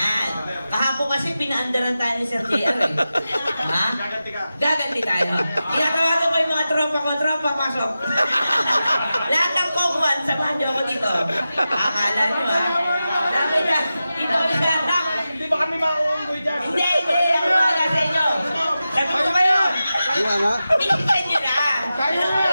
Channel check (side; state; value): both; inverted; correlation -0.93